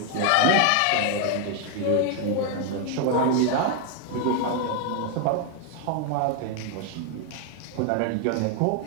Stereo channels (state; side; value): different; both; correlation 0.00